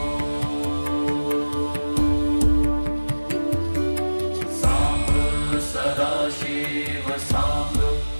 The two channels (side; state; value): both; inverted; correlation -1.00